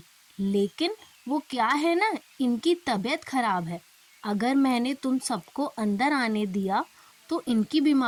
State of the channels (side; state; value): both; identical; correlation 1.00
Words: लेकिन वो क्या है ना, इनकी तबीयत खराब है। अगर मैंने तुम सबको अंदर आने दिया तो इनकी